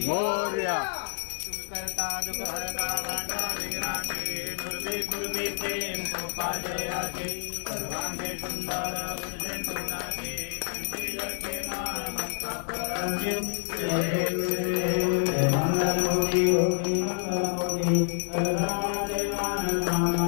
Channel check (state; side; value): silent; right; 59 dB below the other